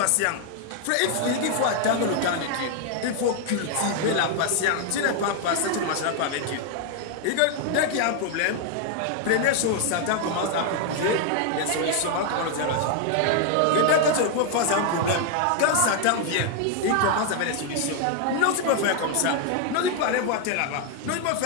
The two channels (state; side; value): different; both; correlation 0.00